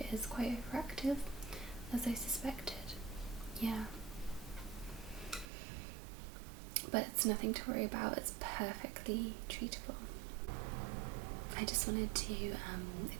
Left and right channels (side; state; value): left; drops out; at 5.5 s